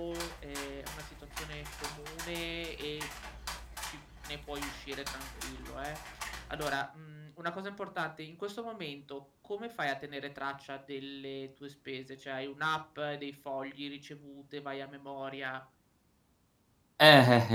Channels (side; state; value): both; identical; correlation 1.00